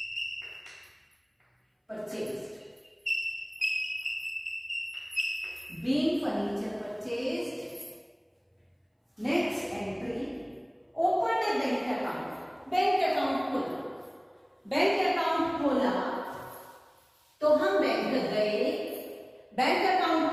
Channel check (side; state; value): both; identical; correlation 1.00